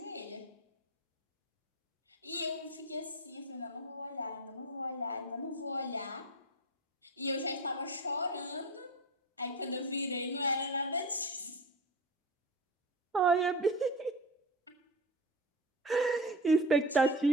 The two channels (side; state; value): both; normal; correlation 0.28